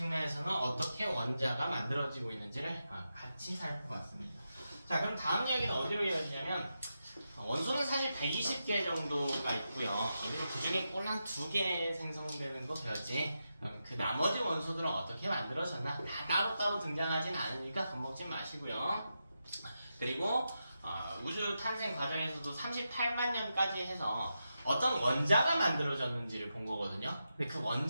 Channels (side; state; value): both; inverted; correlation -0.88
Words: 어떻게 원자가 만들어지고 있는지를 같이 살펴봤습니다. 자, 그럼 다음 이야기는 어디로 이어지냐면, 원소는 사실 120개 정도가 있고요. 그리고 그 중에 꼴 한 2개 생성되는 거 배웠지. 그 나머지 원소들은 어떻게 만들어졌나? 다 따로따로 등장하진 않으니까 겁먹지 마시고요. 그리고 우주 탄생 과정에서도 38만 년까지 해서 어떤 원자가 만들어졌는지를 본 거거든요. 근데 그